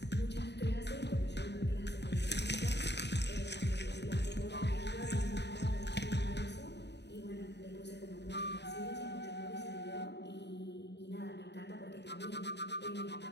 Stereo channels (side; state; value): right; late; 0.50 ms